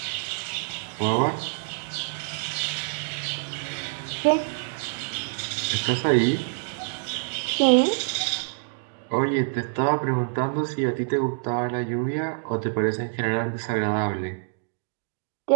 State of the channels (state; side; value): silent; left; digital silence